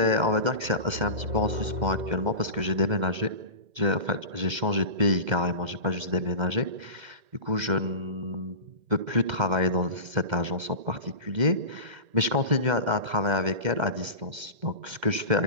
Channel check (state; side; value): late; left; 2.1 ms